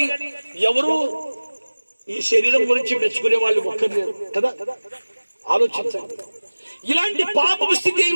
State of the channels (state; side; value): inverted; both; correlation -1.00